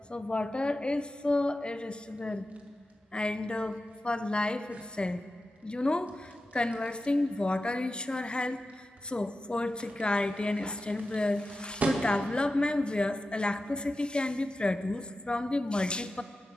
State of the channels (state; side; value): normal; both; correlation 0.92